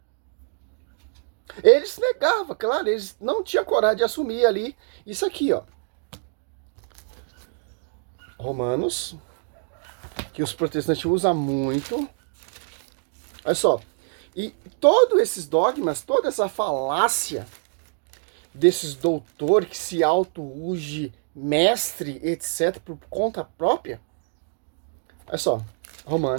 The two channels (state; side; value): silent; left; digital silence